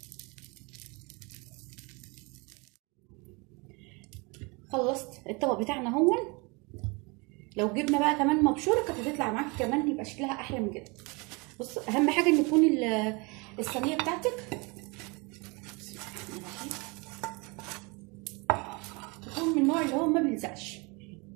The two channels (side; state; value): left; quieter; 28.7 dB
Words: خلصت الطبق بتاعنا هون. لو جبنا بقى كمان مبشوره كانت هتطلع معاكي كمان يبقى شكلها احلى من كده. بص اهم حاجه ان يكون الصينيه بتاعتك تكون من النوع اللي هو ما بيلزقش.